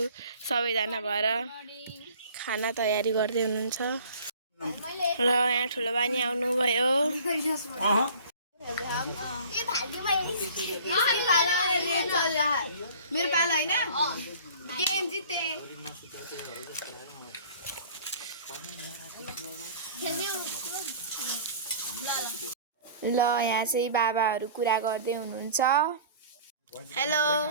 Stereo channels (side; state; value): both; inverted; correlation -0.46